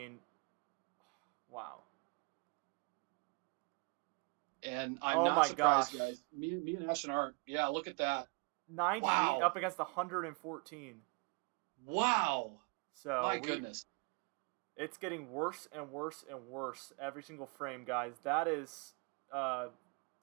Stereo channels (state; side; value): quieter; left; 32.2 dB